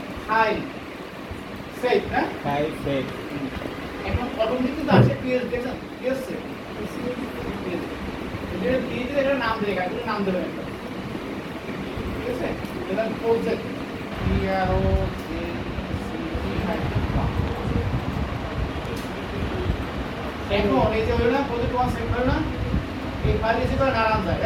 file save না file save এখন অটোমেটিক কিন্তু আসে পিএস দেখেন পিএস সেভ এটা দিয়ে এটা নাম দিয়ে এটা নাম দেবেন একটা ঠিক আছে এটা প্রজেক্ট PRO এখন এই যে হলো না প্রজেক্ট 1 সেভ হলো না এই ফাইল এসে করে নারায়ণ যায়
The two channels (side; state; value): both; identical; correlation 1.00